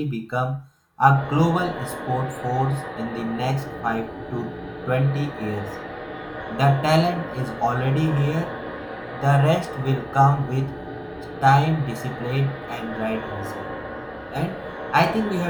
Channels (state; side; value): identical; both; correlation 1.00